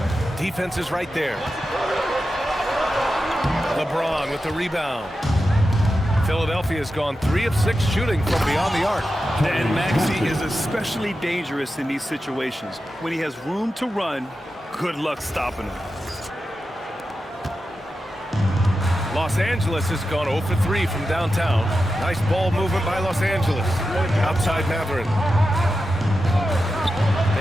Defense is right there. LeBron with the rebound. Philadelphia's gone 3 of 6 shooting from beyond the arc. And Maxey is especially dangerous in these situations. When he has room to run, good luck stopping him. Los Angeles has gone 0 for 3 from downtown. Nice ball movement by Los Angeles. Outside Mathurin.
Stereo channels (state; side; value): normal; both; correlation 0.91